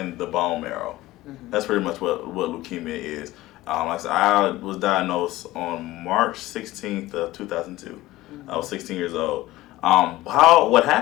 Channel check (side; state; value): right; quieter; 17.1 dB